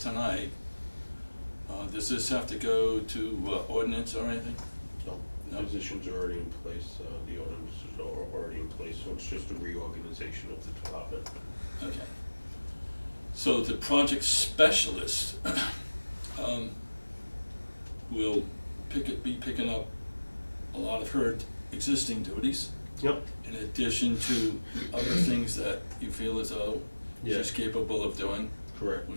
does this have to go to ordinance or anything? No, No. positions are already in place, the ordinances are already in place, so it's just a reorganization of the department. Okay. So the project specialist will be picking up a lot of her existing duties, Yep. in addition to other things that you feel as though she's Yes. capable of doing, Correct.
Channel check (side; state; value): both; inverted; correlation -1.00